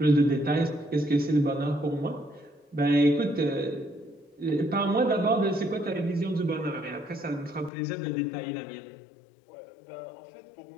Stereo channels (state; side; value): drops out; right; at 7.7 s